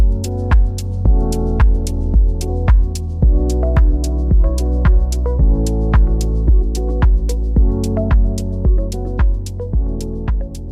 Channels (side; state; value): both; identical; correlation 1.00